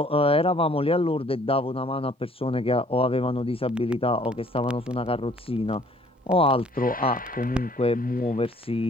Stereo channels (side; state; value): both; normal; correlation 0.59